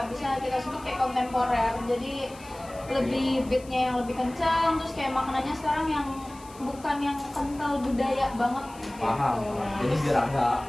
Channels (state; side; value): noise; left; hiss, 22 dB below the sound